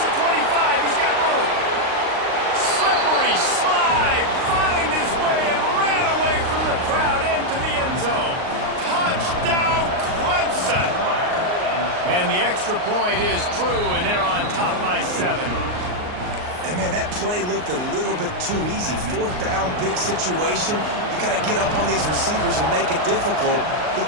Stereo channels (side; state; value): left; late; 39 ms